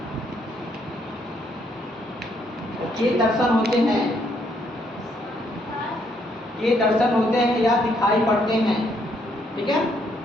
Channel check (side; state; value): both; normal; correlation 0.71